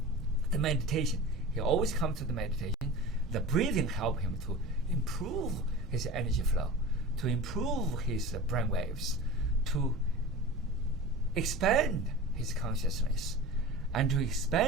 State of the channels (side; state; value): both; normal; correlation 0.34